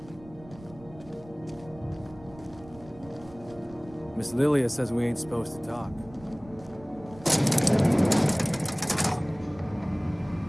Miss Lilia says we ain't supposed to talk.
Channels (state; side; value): noise; right; rumble, 20 dB below the sound